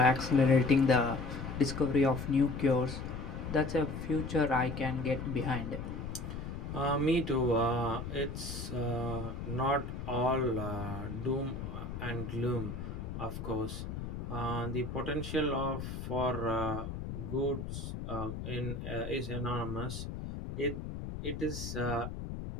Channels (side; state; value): left; noise; rumble, 6 dB below the sound